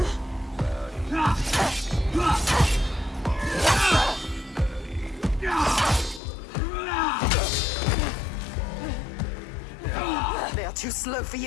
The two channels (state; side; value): drops out; right; at 6.2 s